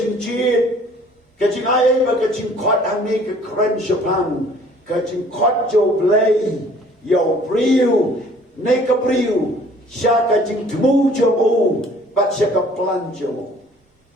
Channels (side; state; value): both; normal; correlation 0.55